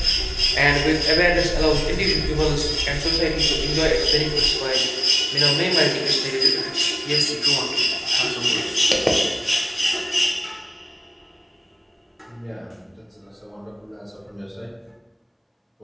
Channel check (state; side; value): identical; both; correlation 1.00